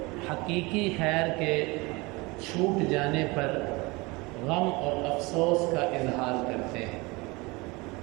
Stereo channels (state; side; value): quieter; left; 24.6 dB